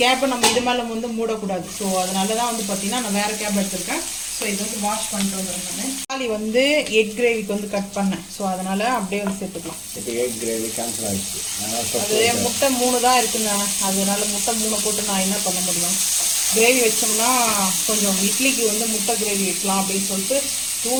நம்ம இது மேலே வந்து மூடக்கூடாது. ஸோ அதனால தான் வந்து பார்த்தீங்கன்னா நான் வேறு கேப் எடுத்திருக்கேன். ஸோ இது வந்து வாஷ் பண்ணிட்டு வந்துடுறேன். நான் தக்காளி வந்து எக் கிரேவிக்கு வந்து கட் பண்ணேன். ஸோ அதனால் அப்படியே வந்து சேர்த்துக்கலாம். இப்போ எக் கிரேவி கேன்சல் ஆகிடுச்சு. அது முட்டை 3 தான் இருக்குங்க. அதனால முட்டை 3 போட்டு நான் என்ன பண்ண முடியும்? கிரேவி வச்சோம்னா கொஞ்சம் இட்லிக்கு வந்து முட்டை கிரேவி வைக்கலாம் அப்படின்னு சொல்லிட்டு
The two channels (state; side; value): identical; both; correlation 1.00